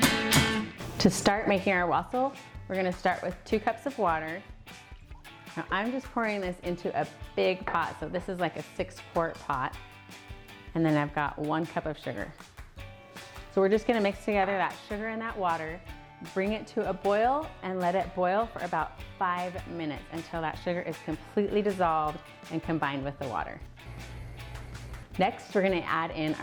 To start making our wassail, we're going to start with 2 cups of water. Now I'm just pouring this into a big pot, so this is like a 6-quart pot. And then I've got 1 cup of sugar. So we're just gonna mix together that sugar and that water, bring it to a boil, and let it boil for about 5 minutes until that sugar is completely dissolved and combined with the water. Next, we're gonna add in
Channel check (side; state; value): both; identical; correlation 1.00